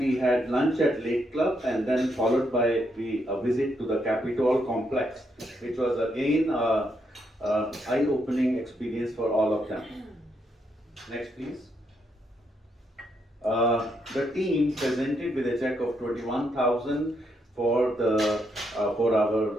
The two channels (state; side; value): normal; both; correlation 0.78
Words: had lunch at Lake Club, and then followed by a visit to the Capitol complex, which was again an eye-opening experience for all of them. Next, please. The team presented with a check of 21,000 for our